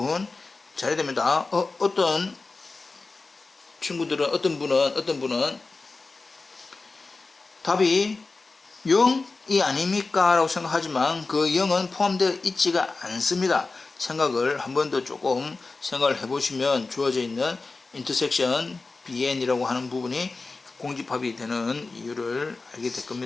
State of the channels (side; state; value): right; quieter; 3.8 dB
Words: 잘해야 됩니다. 어떤 친구들은, 어떤 분은 답이 0이 아닙니까? 라고 생각하지만 그 0은 포함되어 있지가 않습니다. 생각을 한 번 더 조금 생각을 해보시면 주어져 있는 인터섹션 bn이라고 하는 부분이 공집합이 되는 이유를 알게 될